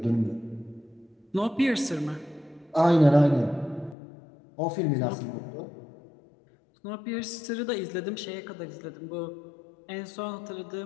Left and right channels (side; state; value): right; drops out; at 4.0 s